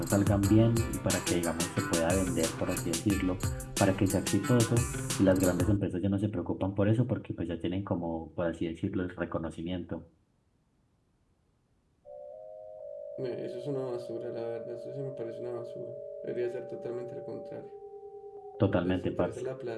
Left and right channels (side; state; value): both; identical; correlation 1.00